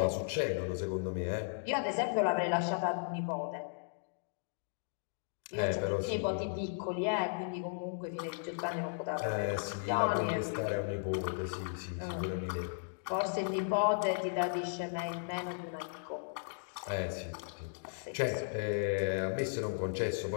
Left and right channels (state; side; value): silent; right; digital silence